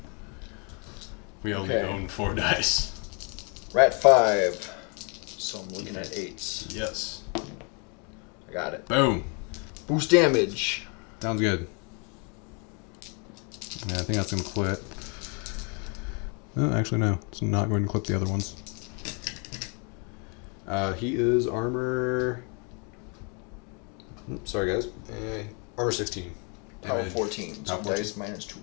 We only Okay. own 4 dice. Rat 5. So I'm looking at 8s. Yes. I got it. Boom. Boost damage. Sounds good. Yeah, I think that's going to clip. Oh, actually, no. It's not going to clip the other ones. He is armor... Oops, sorry, guys. Armor 16. Power Damage. 14. So Power 14. dice minus 2.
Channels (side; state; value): right; quieter; 35.3 dB